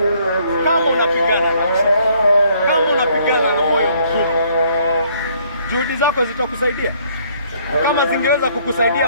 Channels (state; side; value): inverted; both; correlation -0.64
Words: Kama unapigana nacho, kama unapigana na moyo mgumu, juhudi zako zitakusaidia? Kama zingeweza kukusaidia